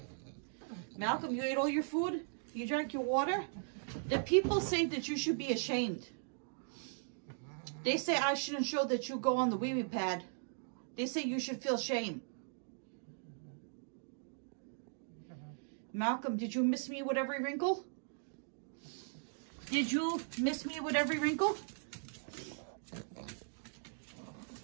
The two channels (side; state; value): left; silent; digital silence